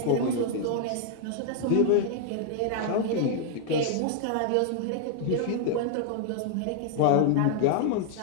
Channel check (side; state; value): both; different; correlation -0.01